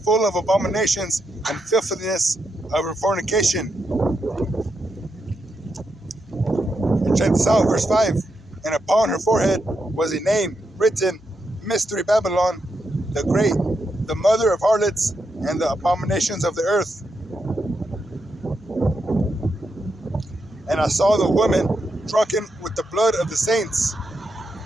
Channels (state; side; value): normal; both; correlation 0.83